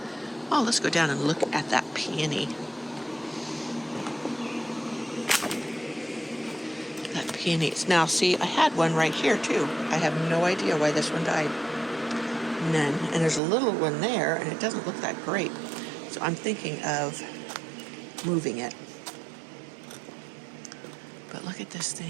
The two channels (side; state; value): left; drops out; at 13.4 s